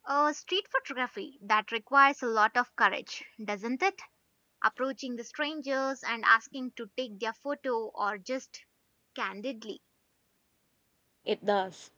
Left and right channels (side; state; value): both; identical; correlation 1.00